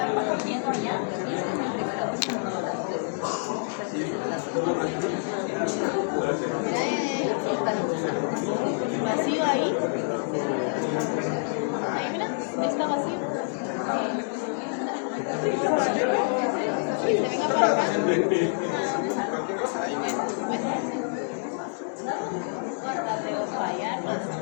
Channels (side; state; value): right; silent; 60 dB below the other